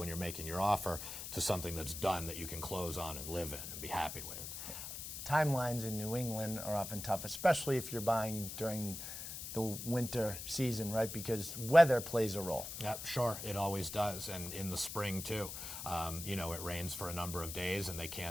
you're making your offer to something that's done that you can close on and live in and be happy with. Timelines in New England are often tough, especially if you're buying during the winter season, right? Because weather plays a role. Yeah, sure, it always does, and in the spring too. It rains for a number of days, and they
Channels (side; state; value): left; noise; hiss, 7 dB below the sound